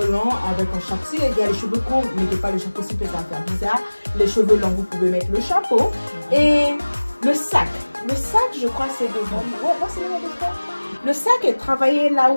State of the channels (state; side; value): inverted; both; correlation -1.00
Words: longs avec un chapeau. Si il y a les cheveux courts, mettez pas le chapeau, si ça va faire bizarre. Les cheveux longs, vous pouvez mettre le chapeau. Et le sac. Le sac, je crois, c'est de... Le sac est travaillé là